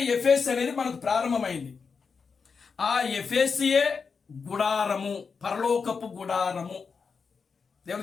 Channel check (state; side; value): quieter; right; 5.4 dB